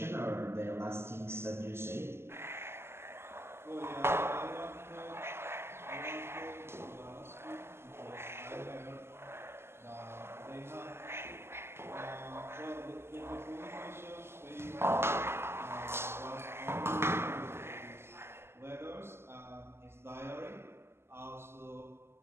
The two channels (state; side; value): late; left; 0.12 ms